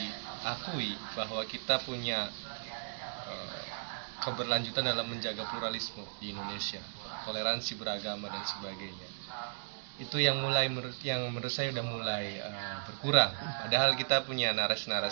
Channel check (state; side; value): silent; left; digital silence